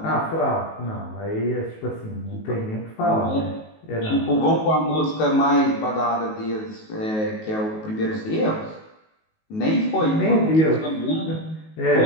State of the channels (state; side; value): late; right; 19 ms